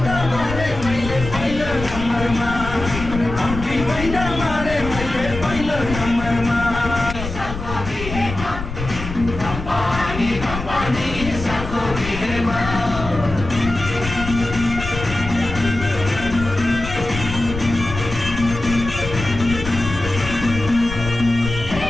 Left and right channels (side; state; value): left; noise; rumble, 8 dB below the sound